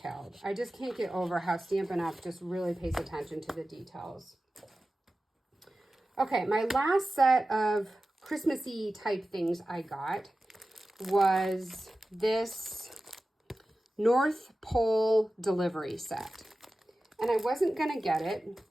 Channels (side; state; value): both; normal; correlation 0.95